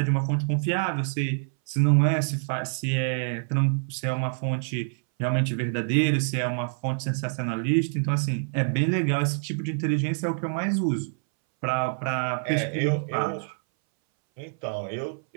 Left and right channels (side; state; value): left; silent; 61 dB below the other